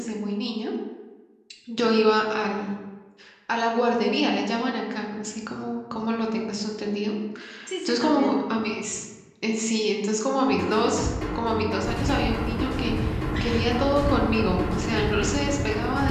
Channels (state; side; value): identical; both; correlation 1.00